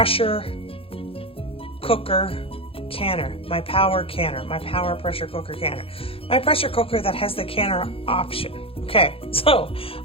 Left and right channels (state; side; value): late; right; 0.27 ms